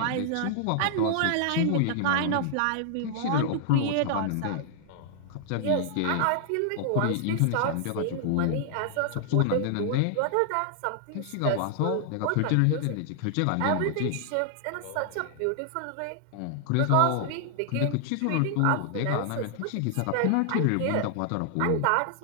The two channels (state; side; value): different; both; correlation -0.01